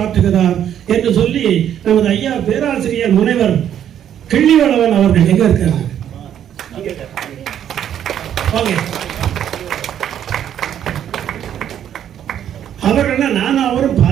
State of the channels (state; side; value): quieter; left; 10.0 dB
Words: ஆற்றுகிறார் என்று சொல்லி நமது ஐயா பேராசிரியர் முனைவர் கிள்ளிவளவன் அவர்கள் எங்க இருக்காங்க? அவர்கள் நானும் அவரும்